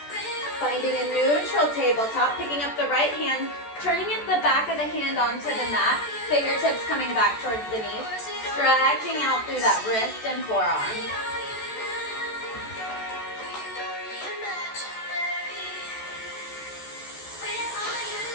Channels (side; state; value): right; late; 14 ms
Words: Finding a neutral tabletop, picking up the right hand, turning it the back of the hand onto the mat, fingertips coming back towards the knees, stretching out through that wrist and forearm.